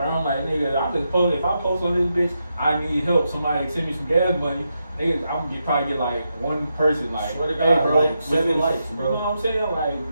I'm like, nigga, if I post on this bitch, I need help. Somebody send me some gas money. Nigga, I'm gonna probably get like 1 person like, hey, bro, like 7 likes, bro. You know what I'm saying? Like,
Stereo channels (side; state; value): both; inverted; correlation -0.85